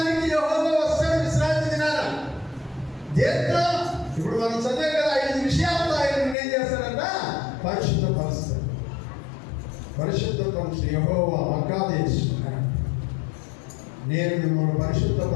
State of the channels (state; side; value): drops out; right; at 6.4 s